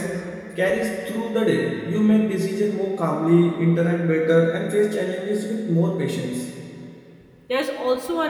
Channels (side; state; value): both; identical; correlation 1.00